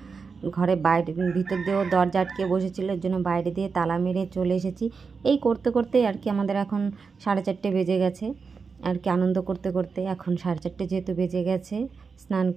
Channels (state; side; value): quieter; left; 5.1 dB